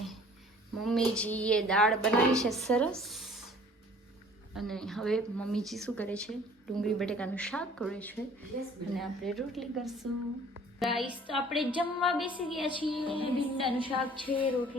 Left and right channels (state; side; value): normal; both; correlation 0.52